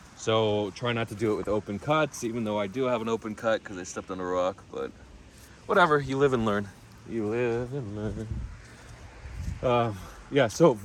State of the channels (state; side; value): identical; both; correlation 1.00